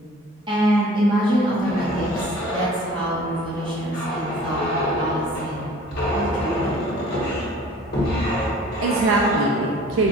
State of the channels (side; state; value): both; normal; correlation 0.48